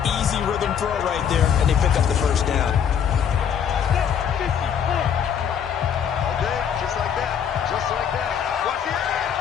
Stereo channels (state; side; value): quieter; right; 8.1 dB